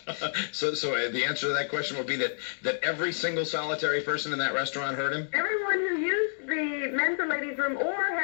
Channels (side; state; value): right; silent; digital silence